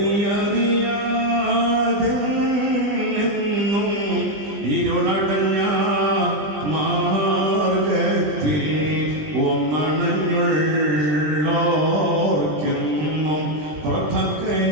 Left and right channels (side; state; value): left; late; 20 ms